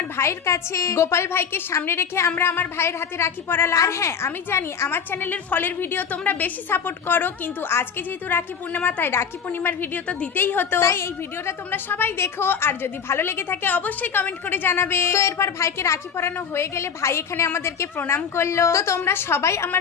ভাইয়ের কাছে। গোপাল ভাইকে সামনে রেখে আমরা আমার ভাইয়ের হাতে রাখি পরালাম। আর হ্যাঁ, আমি জানি আমার চ্যানেলের ফলের ভিডিও তোমরা বেশি সাপোর্ট করো, কিন্তু আজকে যেহেতু রাখি পূর্ণিমা তাই রাখি পূর্ণিমার ভিডিও তো দিতেই হতো, তাই এই ভিডিওটা তোমরা সবাই দেখো। আর যদি ভালো লেগে থাকে অবশ্যই কমেন্ট করে জানাবে। তো এরপর ভাইকে রাখি পরানো হয়ে গেলে ভাই এখানে আমাদেরকে প্রণাম করলো। তো তোমরা সবাই আমার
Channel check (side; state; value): right; quieter; 6.9 dB